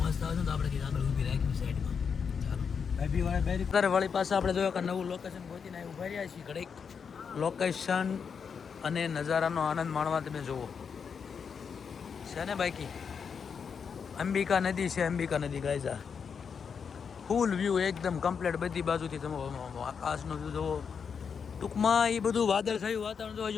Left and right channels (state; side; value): quieter; right; 6.4 dB